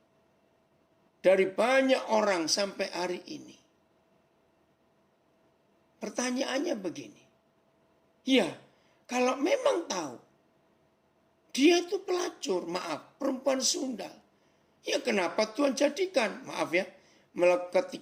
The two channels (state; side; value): identical; both; correlation 1.00